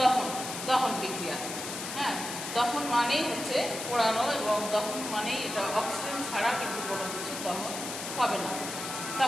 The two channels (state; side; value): noise; left; hiss, 7 dB below the sound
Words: দহন বিক্রিয়া। হ্যাঁ, দহন মানেই হচ্ছে পোড়ানো, এবং দহন মানেই এটা অক্সিজেন ছাড়া কিন্তু কোনো কিছু দহন হবে না।